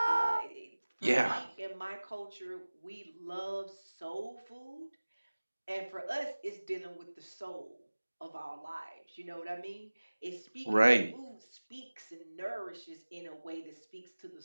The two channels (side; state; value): both; inverted; correlation -1.00